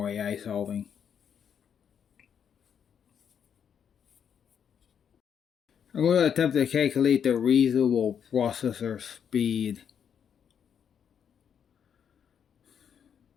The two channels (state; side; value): quieter; right; 8.0 dB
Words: AI solving. I'm going to attempt to calculate the reasonable processor speed.